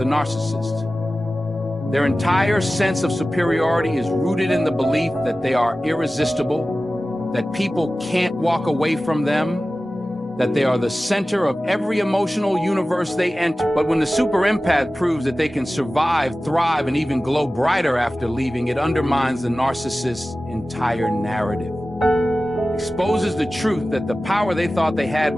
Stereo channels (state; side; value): normal; both; correlation 0.96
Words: narcissist. Their entire sense of superiority is rooted in the belief that they are irresistible, that people can't walk away from them, that they are the center of every emotional universe they enter. But when the super empath proves that they can survive, thrive, and even glow brighter after leaving, it undermines the narcissist's entire narrative. Exposes the truth that the power they thought they had